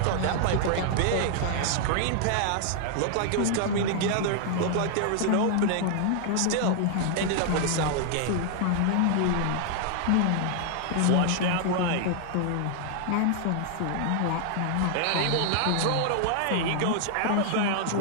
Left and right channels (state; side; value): different; both; correlation 0.00